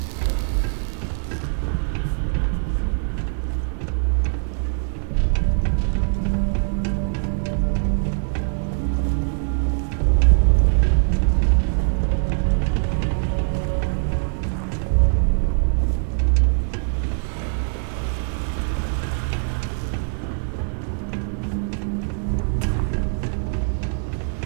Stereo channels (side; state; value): left; silent; digital silence